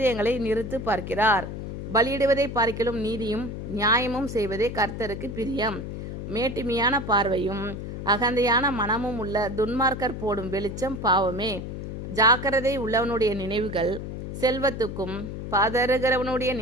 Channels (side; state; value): left; noise; hum, 7 dB below the sound